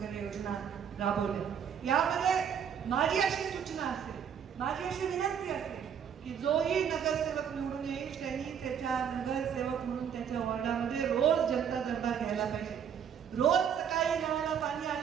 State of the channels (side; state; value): left; quieter; 8.1 dB